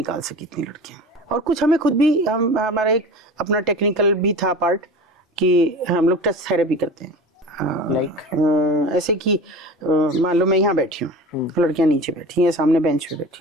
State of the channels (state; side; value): normal; both; correlation 0.34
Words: सकी इतनी लड़कियां। और कुछ हमें खुद भी, हमारा एक अपना टेक्निकल भी था पार्ट कि हम लोग टच थेरेपी करते हैं। ऐसे कि मान लो मैं यहाँ बैठी हूँ, लड़कियां नीचे बैठी हैं, सामने बेंच पे